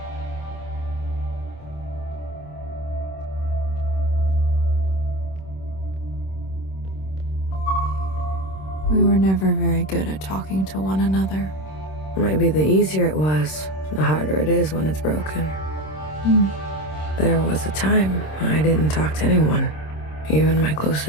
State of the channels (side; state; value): right; late; 26 ms